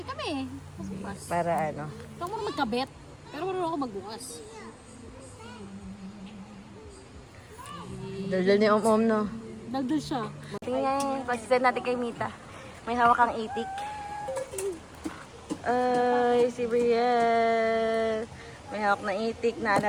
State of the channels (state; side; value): identical; both; correlation 1.00